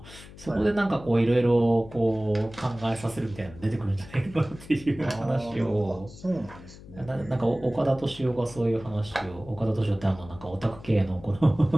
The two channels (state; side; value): noise; left; hum, 18 dB below the sound